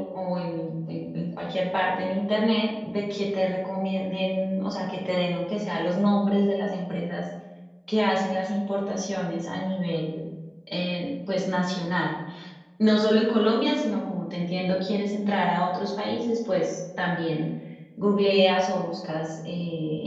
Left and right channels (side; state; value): both; identical; correlation 1.00